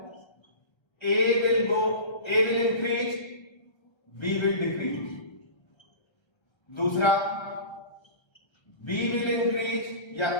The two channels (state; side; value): late; right; 1.3 ms